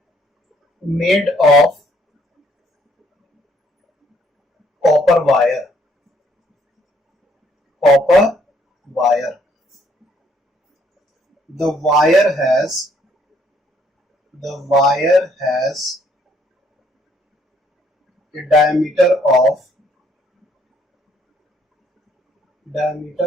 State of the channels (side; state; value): both; normal; correlation 0.67